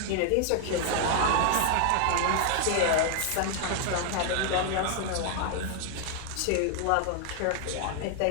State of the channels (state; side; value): different; both; correlation 0.00